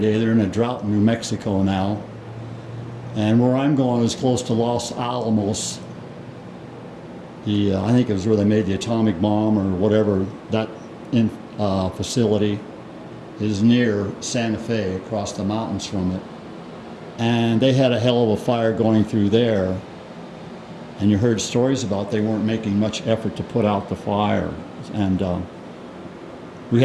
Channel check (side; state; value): both; identical; correlation 1.00